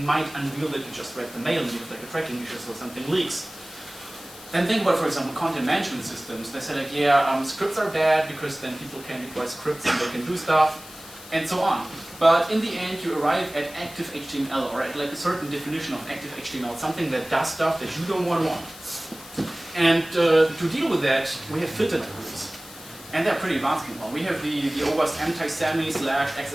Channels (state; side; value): noise; left; hiss, 17 dB below the sound